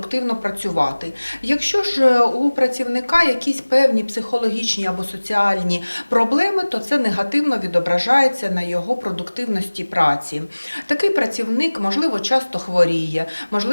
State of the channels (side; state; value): both; inverted; correlation -1.00